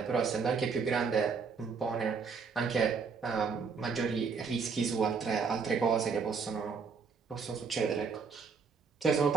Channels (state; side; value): quieter; left; 5.5 dB